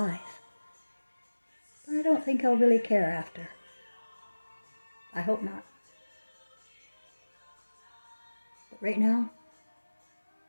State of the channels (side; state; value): both; inverted; correlation -1.00